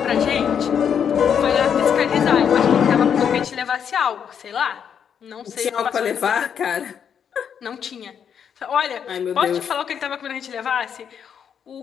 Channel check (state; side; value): quieter; right; 7.9 dB